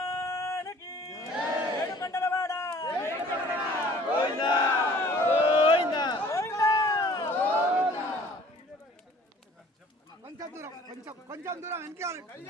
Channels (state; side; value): normal; both; correlation 0.52